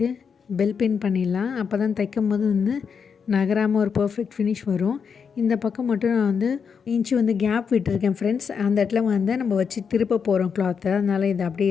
பெல் பின் பண்ணிடலாம். அப்போ தான் தைக்கும் போது வந்து நகராமல் ஒரு பர்ஃபெக்ட் ஃபினிஷ் வரும். இந்த பக்கம் மட்டும் நான் வந்து இன்ச்சு வந்து கேப் விட்டுருக்கேன் ஃப்ரெண்ட்ஸ். அந்த இடத்துல வந்து நம்ம வச்சு திருப்ப போகிறோம் கிளாத்தை, அதனால் இது அப்படியே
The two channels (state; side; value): quieter; right; 6.4 dB